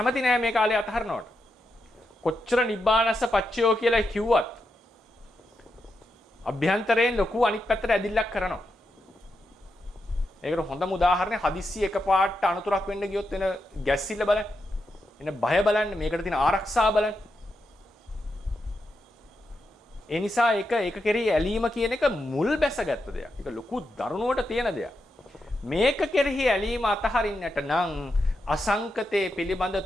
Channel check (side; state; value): both; normal; correlation 0.86